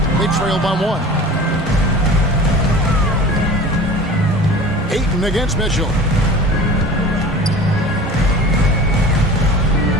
They trail by 1. Ayton against Mitchell.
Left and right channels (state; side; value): normal; both; correlation 0.39